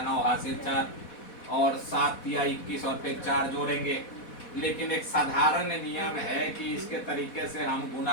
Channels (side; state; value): right; late; 4.1 ms